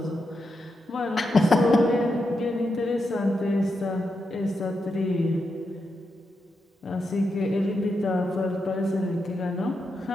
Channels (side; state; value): both; normal; correlation 0.85